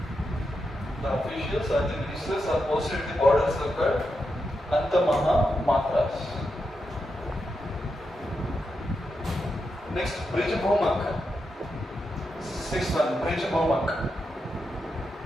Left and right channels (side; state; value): both; normal; correlation 0.86